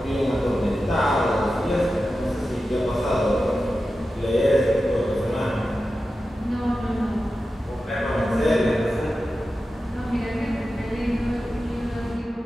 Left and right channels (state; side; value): normal; both; correlation 0.92